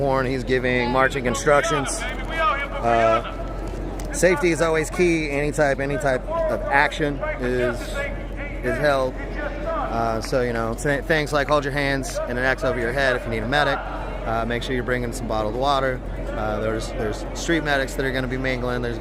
He's giving marching instructions. Safety is always key. Any type of action is held. So things like hold your hands and an X over your head if you need a medic. Make sure you're bringing some bottled water. There's street medics that are going to be mingling. There's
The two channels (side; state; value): both; identical; correlation 1.00